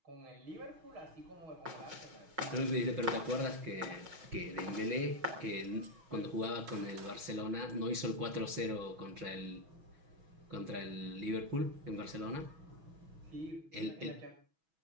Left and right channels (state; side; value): late; left; 6.2 ms